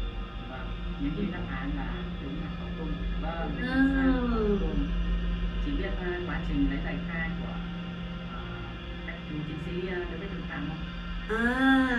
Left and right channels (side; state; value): both; identical; correlation 1.00